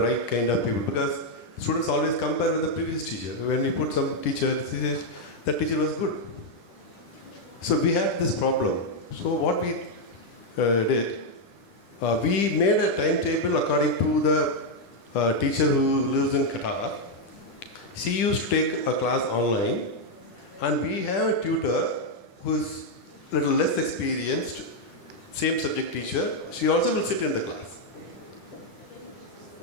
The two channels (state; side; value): late; right; 10 ms